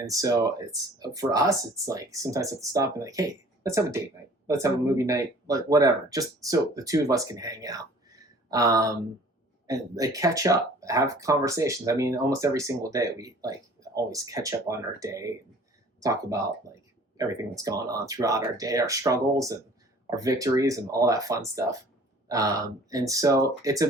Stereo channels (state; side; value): normal; both; correlation 0.50